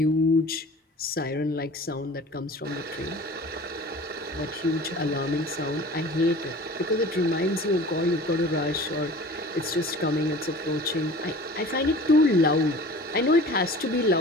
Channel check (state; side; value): normal; both; correlation 0.42